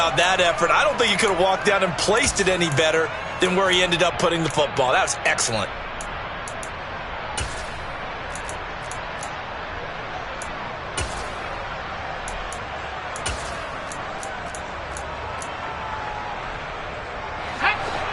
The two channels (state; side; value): identical; both; correlation 1.00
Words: that effort. I don't think he could have walked down and placed it any better than where he ended up putting the football. That was excellent.